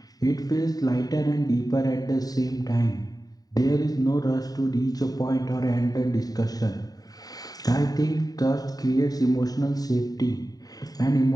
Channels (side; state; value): right; late; 0.18 ms